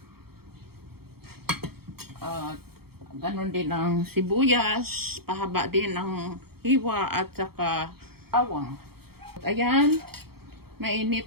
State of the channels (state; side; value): late; left; 0.95 ms